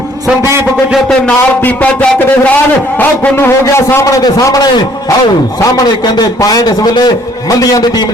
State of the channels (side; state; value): both; normal; correlation 0.61